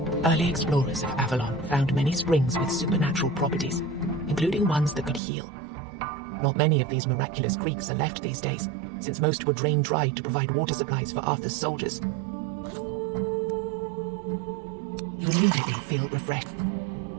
Early explorers of Avalon found many springs with supernatural properties, including ones that could heal. Not many of these miraculous creeks are left these days, since most were drained dry to provide water supplies for Arthur's soldiers. You immediately feel refreshed.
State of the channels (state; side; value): drops out; left; at 5.2 s